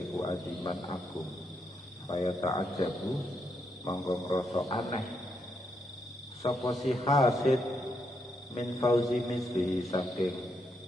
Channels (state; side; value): normal; both; correlation 0.79